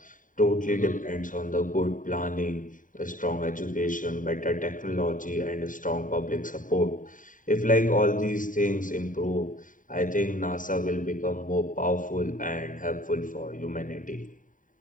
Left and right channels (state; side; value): late; right; 0.38 ms